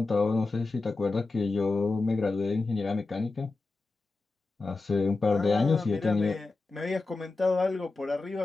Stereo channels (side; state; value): right; quieter; 3.5 dB